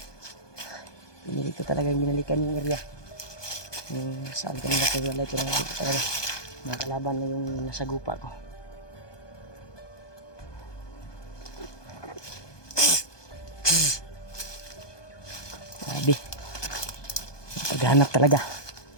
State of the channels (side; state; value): right; late; 1.2 ms